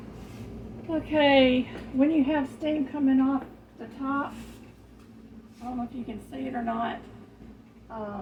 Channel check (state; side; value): identical; both; correlation 1.00